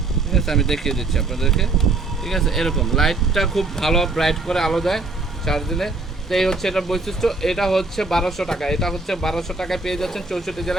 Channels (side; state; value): left; quieter; 3.5 dB